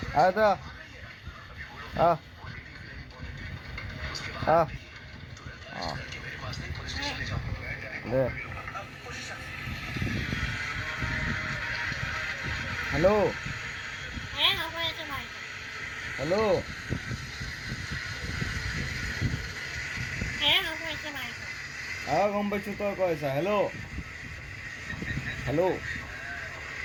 আহ দা আহ আহ আহ দে হ্যালো হ্যালো গম পাইছো তই কৈ আছা হেল্ল' হেল্ল'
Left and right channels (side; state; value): both; identical; correlation 1.00